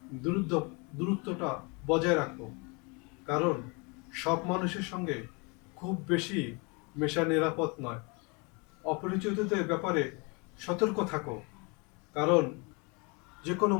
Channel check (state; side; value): quieter; right; 30.6 dB